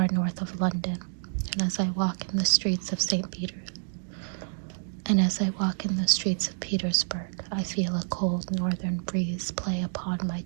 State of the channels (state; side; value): silent; left; digital silence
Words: north of London, and as I walk in the streets of Petersburg, I feel a cold northern breeze play upon my